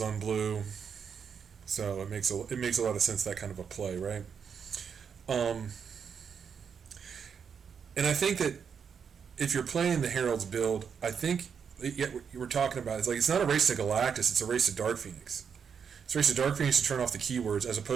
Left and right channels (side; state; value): left; quieter; 6.8 dB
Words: on blue. So it makes a lot of sense, that kind of a play, right? And I think that if you're playing the Herald's build, I think what you were talking about is like, it's not a race to Galactus, it's a race to Dark Phoenix. It's a race to Dark Phoenix to turn off the keywords, as